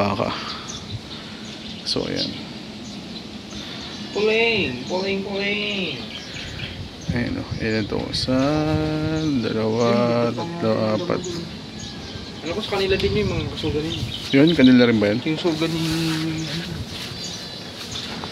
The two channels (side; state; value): both; identical; correlation 1.00